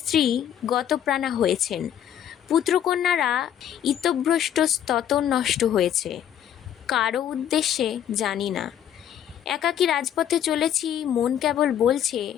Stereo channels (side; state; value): right; quieter; 10.0 dB